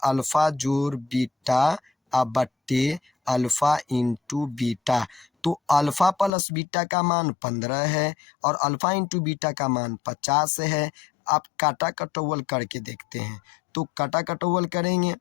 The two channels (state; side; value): drops out; right; at 6.3 s